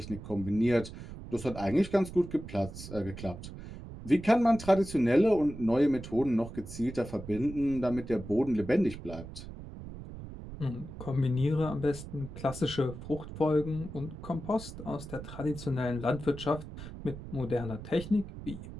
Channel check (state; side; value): noise; right; rumble, 12 dB below the sound